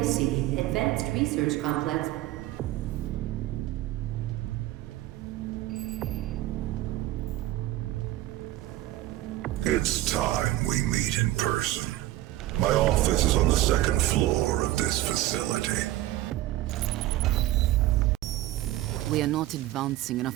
Advanced Research Complex. It's time we meet in person. My office is on the second floor of this facility. We are not advancing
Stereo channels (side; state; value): left; quieter; 15.7 dB